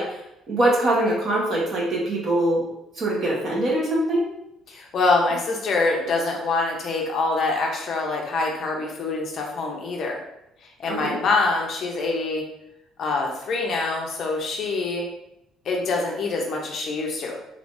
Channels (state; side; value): normal; both; correlation 0.65